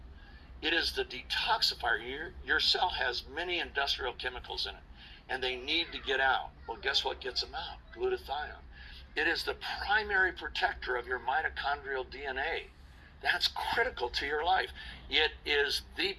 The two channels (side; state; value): both; identical; correlation 1.00